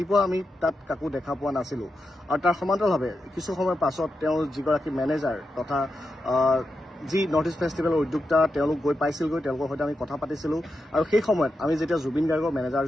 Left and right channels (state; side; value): normal; both; correlation 0.88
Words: আমি তাত কাকো দেখা পোৱা নাছিলোঁ। আৰু তাৰ সমান্তৰালভাৱে কিছু সময়ৰ পাছত তেওঁৰ যিগৰাকী মেনেজাৰ তথা যি নৰ্থ ইষ্ট ফেষ্টিভেলৰ উদ্যোক্তা তেওঁলোক গৈ পাইছিলগৈ, তেওঁলোকৰ সৈতে আমি কথা পাতিছিলোঁ। আৰু সেই সময়ত আমি যেতিয়া জুবিন গাৰ্গৰ